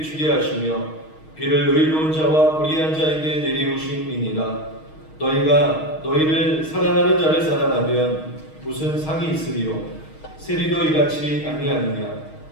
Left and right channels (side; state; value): right; late; 6.4 ms